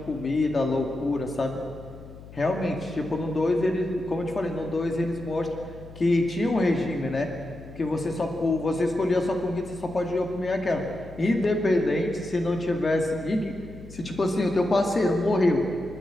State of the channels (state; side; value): noise; left; hum, 17 dB below the sound